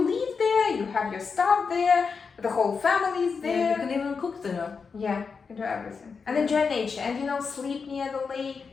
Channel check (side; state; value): right; quieter; 5.3 dB